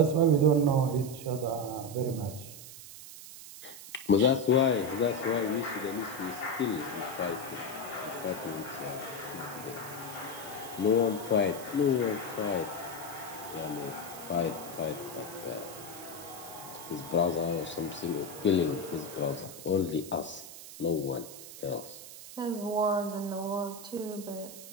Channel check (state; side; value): noise; right; hiss, 14 dB below the sound